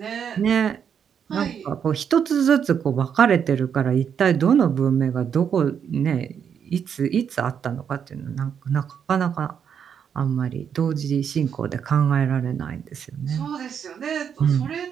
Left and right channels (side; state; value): left; quieter; 7.7 dB